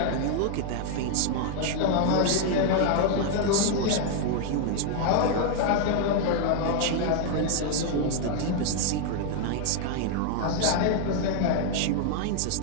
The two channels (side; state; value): both; different; correlation 0.00